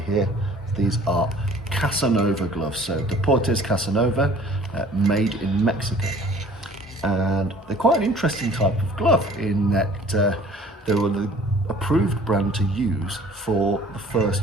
here, these are Casanova gloves. So Deportes Casanova, made in Mexico. And they're quite an interesting type of glove in that they were the approved brand to use for the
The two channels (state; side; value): normal; both; correlation 0.52